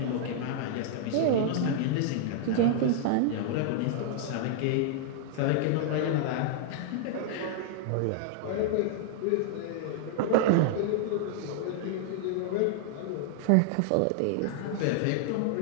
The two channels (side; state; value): both; different; correlation -0.01